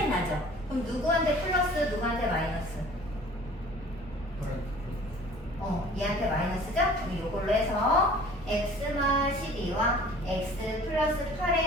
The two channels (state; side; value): normal; both; correlation 0.48